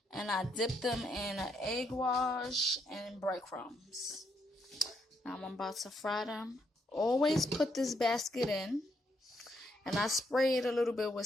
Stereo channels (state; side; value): normal; both; correlation 0.76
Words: and I dipped them in an egg wash and breadcrumbs. Now I'm about to fry them. Always put this basket in, and I spray it a little bit with